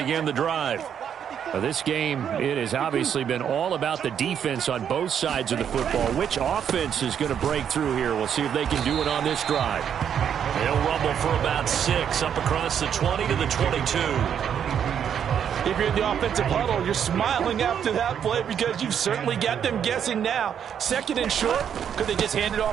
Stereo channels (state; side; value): quieter; left; 8.5 dB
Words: the drive. Now, this game, it has obviously been all about the defense on both sides of the football. Which offense is going to break through here? We'll see if they can do it on this drive. They'll rumble for about 6 up across the 20 to the 22. If you're in the offensive huddle, you're smiling after that play because you've certainly got them guessing now. Second and short, could they just hand it